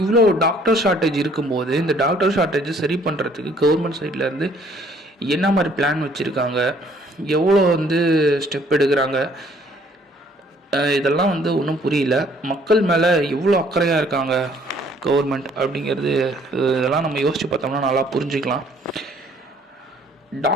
இவ்வளோ டாக்டர் ஷார்ட்டேஜ் இருக்கும்போது இந்த டாக்டர் ஷார்ட்டேஜை சரி பண்ணுறதுக்கு கவர்மெண்ட் சைட்லேருந்து என்ன மாதிரி பிளான் வச்சுருக்காங்க, எவ்வளோ வந்து ஸ்டெப் எடுக்கிறாங்க, இதெல்லாம் வந்து ஒன்றும் புரியல. மக்கள் மேலே எவ்வளோ அக்கறையாக இருக்காங்க கவர்மெண்ட் அப்படிங்கிறது, இதெல்லாம் நம்ம யோசித்து பார்த்தோம்னா நல்லா புரிஞ்சுக்கலாம்.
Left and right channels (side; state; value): both; normal; correlation 0.61